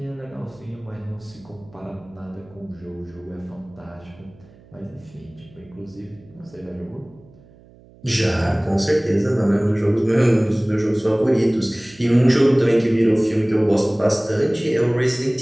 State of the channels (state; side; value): noise; right; hum, 25 dB below the sound